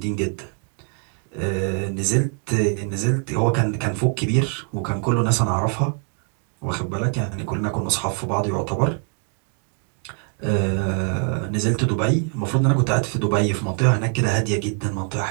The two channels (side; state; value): left; quieter; 39.7 dB